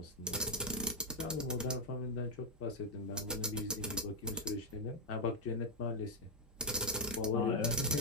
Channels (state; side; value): normal; both; correlation -0.02